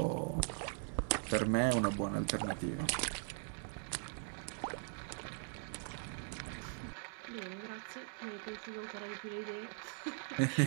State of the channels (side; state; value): left; silent; 51 dB below the other